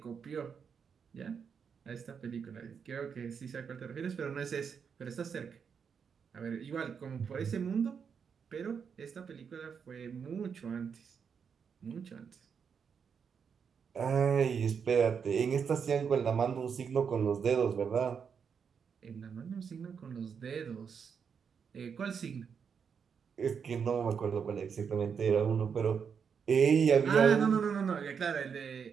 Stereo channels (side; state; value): left; quieter; 6.7 dB